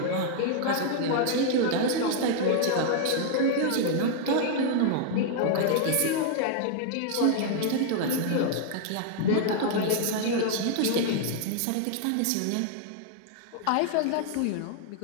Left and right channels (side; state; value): both; different; correlation 0.00